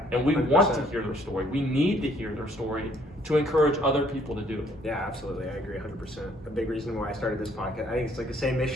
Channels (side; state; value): both; normal; correlation 0.63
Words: and we 100%. want to hear their story. We need to hear their story to encourage other people to do it. Yeah, absolutely. I agree 100%. A big reason why I started this podcast. I think it's like the same